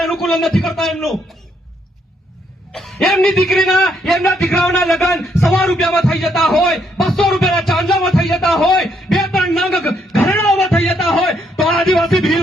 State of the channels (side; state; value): both; normal; correlation 0.73